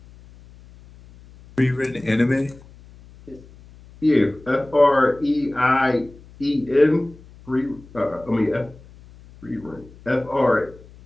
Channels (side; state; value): left; noise; hum, 23 dB below the sound